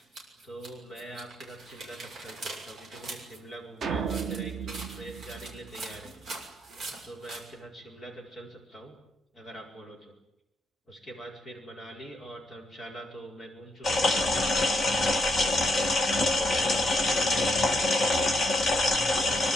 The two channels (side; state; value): both; normal; correlation 0.77